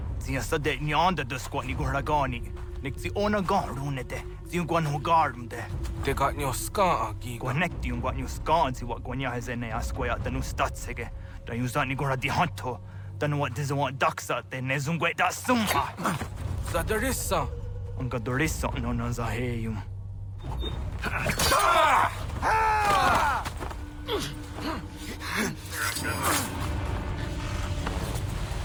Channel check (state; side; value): identical; both; correlation 1.00